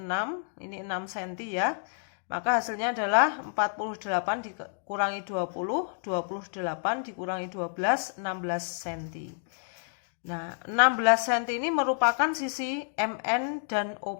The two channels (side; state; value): right; silent; digital silence